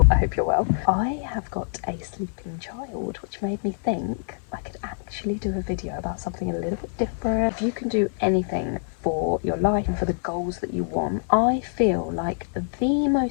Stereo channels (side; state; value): right; silent; 60 dB below the other